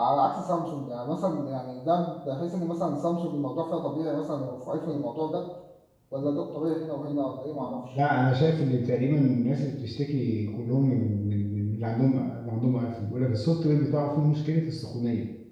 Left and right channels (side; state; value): both; identical; correlation 1.00